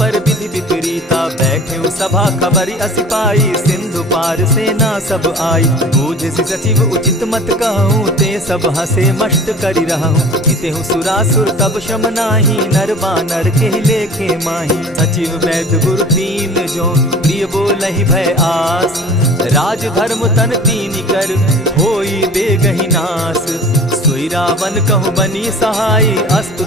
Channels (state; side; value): normal; both; correlation 0.42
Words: विधि विपरीता। बैठे सभा खबरी असी पाई, सिंधु पार सेना सब आई। बूझ सचिव उचित मत कहूँ, ते सब हसे मष्ट करि रहूँ। हितेहु सुरासुर तब शम नाही, नर बानर के लेखे माही। सचिव वैद्य गुरु तीन जो, प्रिय बोलहि भय आस। राज धर्म तन तीन कर, होई बेगहि नास। सोई रावण कहु बनी सहाय,